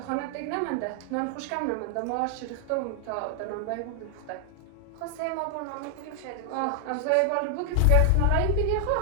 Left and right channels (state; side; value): different; both; correlation 0.00